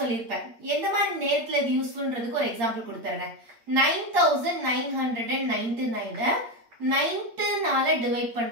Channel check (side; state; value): left; late; 8.6 ms